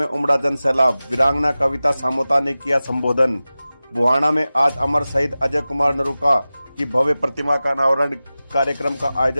उमड़ा जन सैलाब। वीरांगना कविता सामोता ने किया संबोधन। बुहाना में आज अमर शहीद अजय कुमार नरूका की भव्य प्रतिमा का अनावरण कार्यक्रम का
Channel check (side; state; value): both; inverted; correlation -0.96